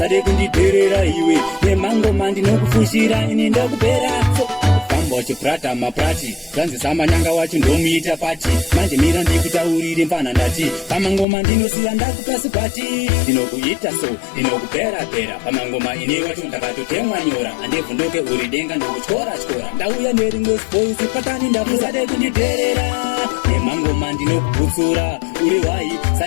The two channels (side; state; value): right; drops out; at 11.2 s